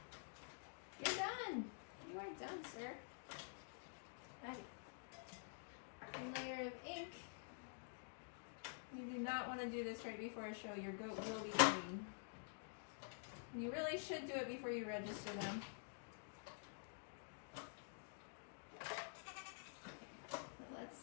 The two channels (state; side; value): silent; right; digital silence